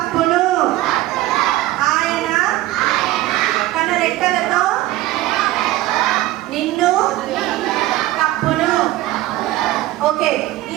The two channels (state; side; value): quieter; left; 16.4 dB